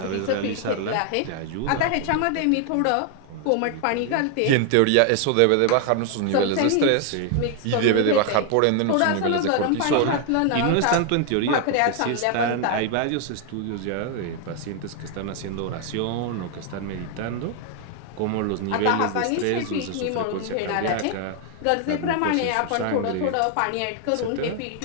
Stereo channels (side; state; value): both; different; correlation 0.00